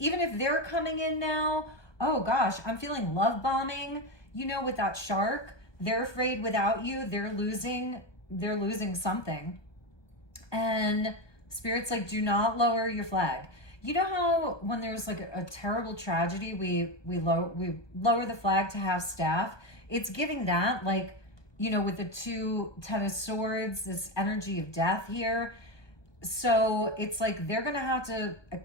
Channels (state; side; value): late; right; 1.2 ms